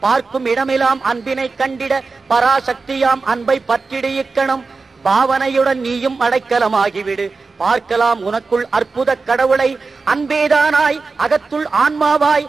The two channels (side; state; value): left; quieter; 4.2 dB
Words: பார்க்கும் இடமெல்லாம் அன்பினை கண்டிட பராசக்தியாம் அன்பை பற்றிடு இக்கணம். பாவனையுடன் நீயும் அடைக்கலமாகிவிடு. பார்க்கலாம் உனக்குள் அற்புத கடவுளை. அன்பேதானாய் அகத்துள் ஆன்மாவாய்